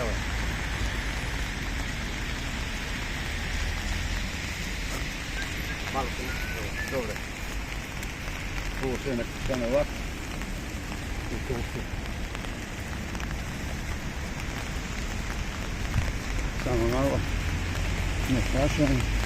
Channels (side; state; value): both; identical; correlation 1.00